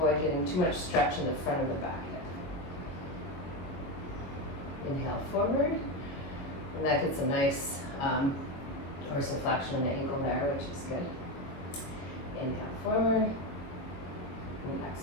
getting too much stretch in the front of the back hip. Inhale forward, and that gets a nice dorsiflexion in the ankle there, which is good. Inhale forward, and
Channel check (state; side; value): late; right; 22 ms